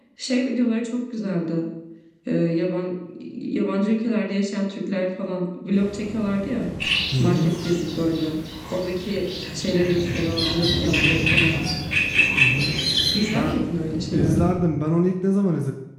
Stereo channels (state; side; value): identical; both; correlation 1.00